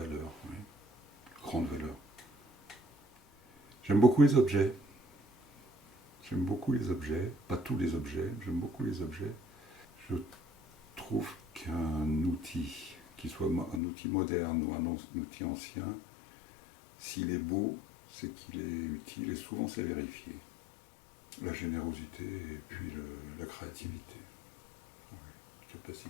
oui. Grande valeur. J'aime beaucoup les objets. J'aime beaucoup les objets, pas tous les objets, j'aime beaucoup les objets. Je trouve qu'un outil, qu'il soit un outil moderne ou un outil ancien, s'il est beau, c'est qu'il est utile et souvent c'est vérifié. La générosité et puis la créativité. Ah oui, la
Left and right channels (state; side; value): drops out; right; at 13.8 s